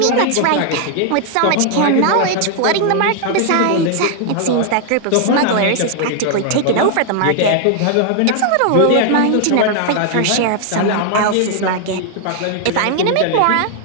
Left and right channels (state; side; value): different; both; correlation 0.00